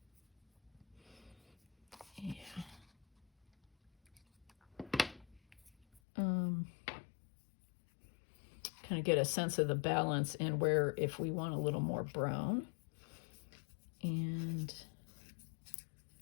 yeah. Kind of get a sense of the balance and where, if we want a little more brown. And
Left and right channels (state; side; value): drops out; right; at 6.0 s